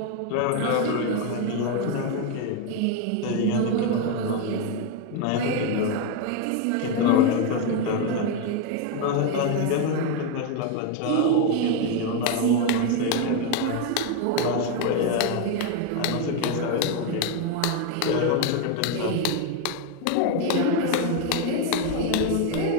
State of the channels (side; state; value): both; different; correlation 0.01